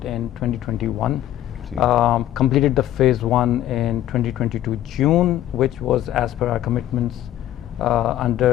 in 2021. Completed the phase 1 in 2022 June, which was as per our commitments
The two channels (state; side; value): quieter; right; 12.8 dB